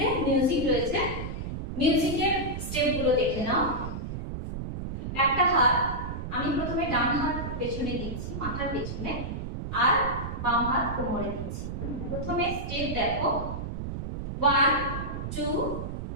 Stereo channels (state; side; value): noise; right; rumble, 6 dB below the sound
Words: মিউজিক রয়েছে, মিউজিকের স্টেপগুলো দেখে নাও। একটা হাত আমি প্রথমে ডান হাত পেছনে দিচ্ছি, মাথার পেছনে, আর বাম হাত কোমরে দিচ্ছি। প্রথমে স্টেপ দেখো, 1 2